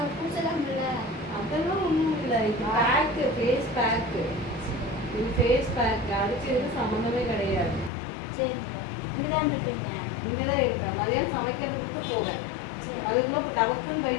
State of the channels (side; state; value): right; drops out; at 7.9 s